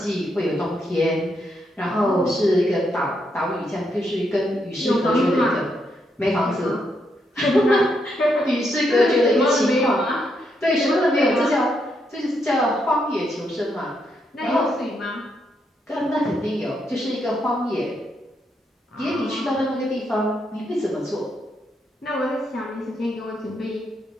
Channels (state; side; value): normal; both; correlation 0.79